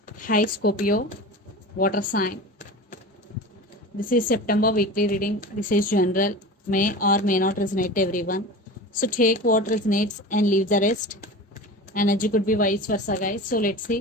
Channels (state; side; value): normal; both; correlation 0.32